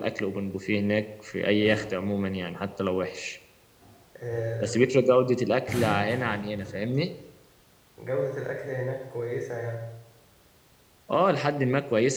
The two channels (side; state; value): both; identical; correlation 1.00